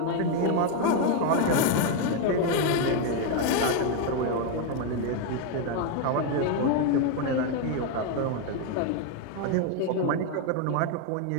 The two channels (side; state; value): both; different; correlation 0.01